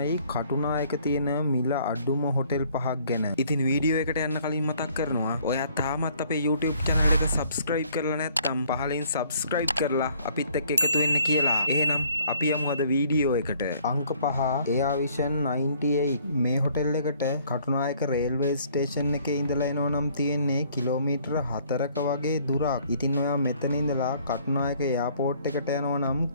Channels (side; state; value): both; inverted; correlation -0.61